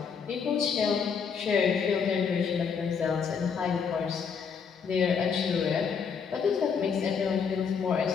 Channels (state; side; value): quieter; right; 6.3 dB